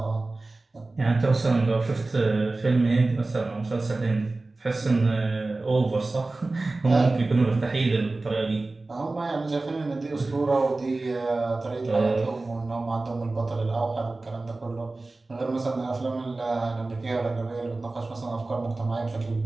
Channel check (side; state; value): left; quieter; 3.2 dB